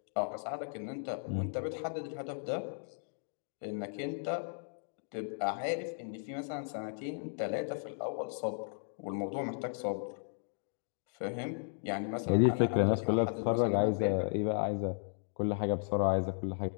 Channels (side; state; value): right; silent; digital silence